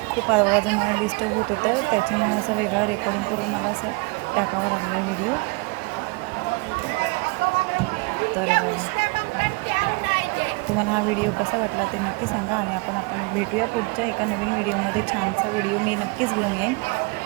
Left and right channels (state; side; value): quieter; left; 28.5 dB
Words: खूप आवाजामुळे डिस्टर्ब होत होतं त्याच्यामुळे असं वेगळं रेकॉर्डिंग करून मला असं टाकावं लागलं व्हिडिओ. तर तुम्हाला हा व्हिडिओ कसा वाटला ते नक्की सांगा. आणि आपण भेटूया पुढच्या एका नवीन व्हिडिओमध्ये. छानसा व्हिडिओ मी नक्कीच घेऊन येईन.